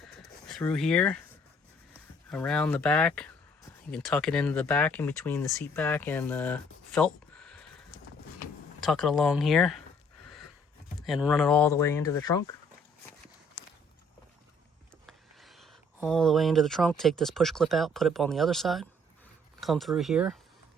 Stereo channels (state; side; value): normal; both; correlation 0.61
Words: Through here, around the back, you can tuck it into the back in between the seat back and the felt. Tuck it along here and run it all the way into the trunk. All the way into the trunk, take this push clip out, put it on the other side, come through here.